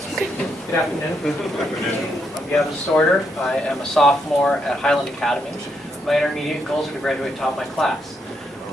Good afternoon. I'm Gavin Sorter. I am a sophomore at Highland Academy. My intermediate goals are to graduate top of my class.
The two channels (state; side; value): normal; both; correlation 0.78